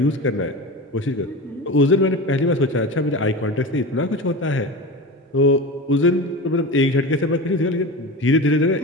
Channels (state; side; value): normal; both; correlation 0.28